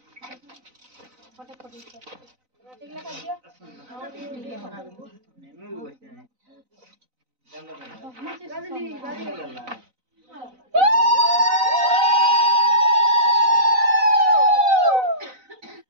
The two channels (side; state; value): left; late; 4.0 ms